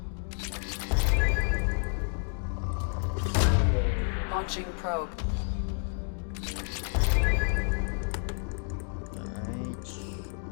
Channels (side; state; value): right; silent; 55 dB below the other